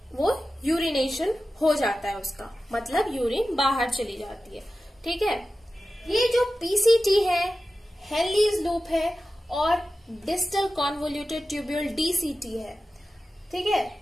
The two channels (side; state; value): both; normal; correlation 0.93